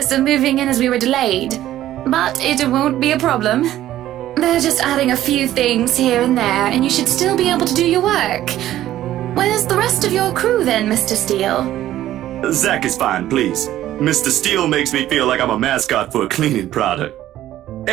of moving in as we were delayed, but it won't be a problem. They're just adding a few things here and there, and you should still be able to do your work. Where's the rest of your crew then, Mr. Steele? Zach is fine, please. Mr. Steele makes me feel like I'm a mascot for a cleaning product.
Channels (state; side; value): quieter; left; 13.4 dB